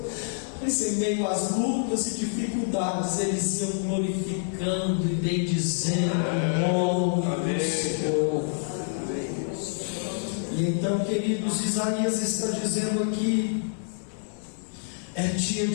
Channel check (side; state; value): right; silent; digital silence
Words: mas em meio às lutas e dificuldades eles iam glorificando e bendizendo o nome do Senhor. E então, queridos, Isaías está dizendo aqui: é dia